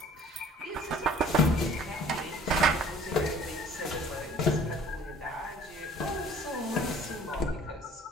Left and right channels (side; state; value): both; normal; correlation 0.52